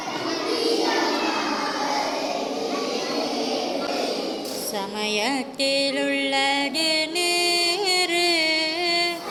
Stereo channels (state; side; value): identical; both; correlation 1.00